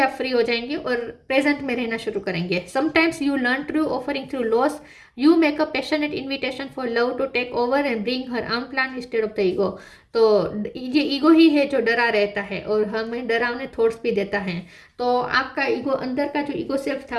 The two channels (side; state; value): both; identical; correlation 1.00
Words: फ्री हो जाएंगे और प्रेजेंट में रहना शुरू करेंगे। Sometimes you learn through offering through loss, you make a passionate invitation for love to take over and bring her own plan instead of the ego. तो ये ईगो ही है जो डरा रहता है और हमें डरावने थॉट्स भी देता है। तो आपका ईगो, अंदर का जो ईगो सेल्फ था